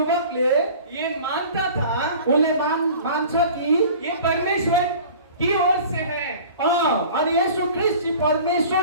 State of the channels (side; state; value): both; inverted; correlation -0.43